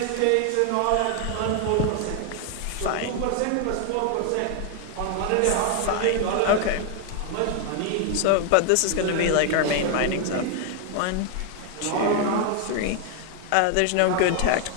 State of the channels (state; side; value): different; both; correlation 0.00